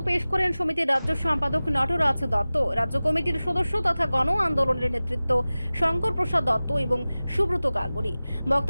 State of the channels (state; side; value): inverted; both; correlation -0.97